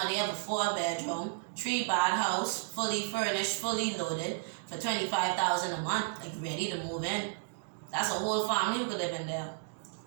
they have a 4-bedroom, 3-bath house, fully furnished, fully loaded for $25,000 a month, like ready to move in. That's a whole family who could live in there.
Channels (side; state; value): left; silent; digital silence